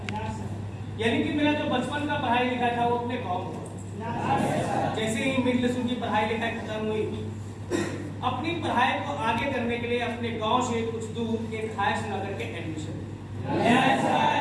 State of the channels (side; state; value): both; identical; correlation 1.00